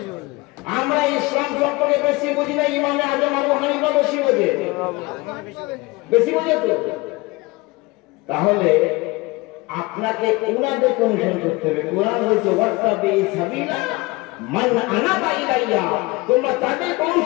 আমরা ইসলাম সম্পর্কে বেশি বুঝি না ইমামে আযম আবু হানিফা বেশি বোঝে? বেশি বোঝে তো। তাহলে আপনাকে উনাদের অনুসরণ করতে হবে। কোরআন বলছে ওয়াত্তাবি সাবিলা মান আনাবা ইলাইয়া, তোমরা তাদের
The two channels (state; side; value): quieter; right; 23.1 dB